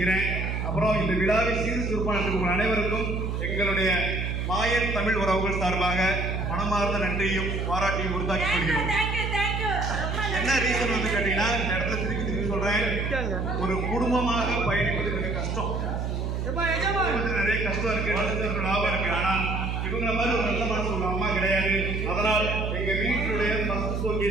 அப்புறம் இந்த விழாவை சீர் சிறப்பான அனைவருக்கும் எங்களுடைய மாயன் தமிழ் உறவுகள் சார்பாக மனமார்ந்த நன்றியும் பாராட்டியும் உறுதாக்கி கொள்கிறோம். என்ன ரீசன் வந்து கேட்டீங்கன்னா, இந்த இடத்துல திருப்பி சொல்றேன், ஒரு குடும்பமாக பயணிப்பது மிக கஷ்டம். நிறைய கஷ்டம் இருக்கு, லாபம் இருக்கு. ஆனா இவங்கள மாதிரி ஒரு நல்ல மனசு உள்ள அம்மா கிடையாது. அதனால் எங்க வீட்டுடைய ஃபர்ஸ்ட்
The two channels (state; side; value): noise; right; hum, 1 dB below the sound